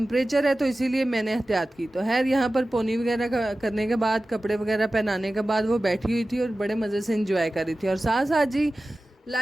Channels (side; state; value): both; normal; correlation 0.96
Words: है, तो इसीलिए मैंने एहतियात की। तो यहाँ पर पोनी वगैरह करने के बाद कपड़े वगैरह पहनाने के बाद वो बैठी हुई थी और बड़े मज़े से इंजॉय कर रही थी। और साथ साथ जी